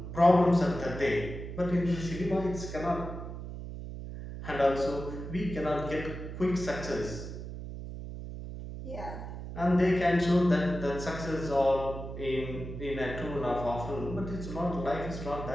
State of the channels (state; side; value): noise; right; hum, 9 dB below the sound